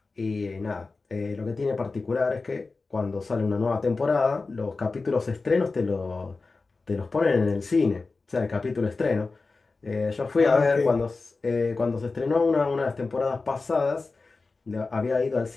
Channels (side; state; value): right; quieter; 3.9 dB